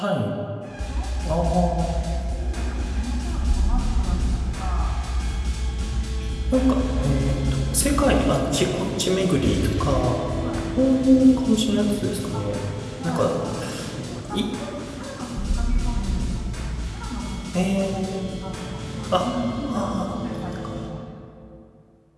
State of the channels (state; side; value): identical; both; correlation 1.00